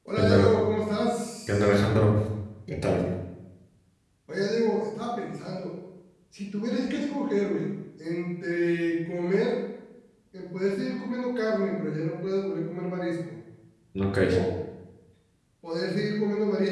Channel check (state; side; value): identical; both; correlation 1.00